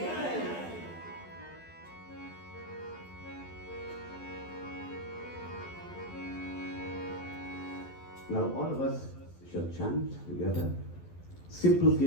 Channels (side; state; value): right; late; 12 ms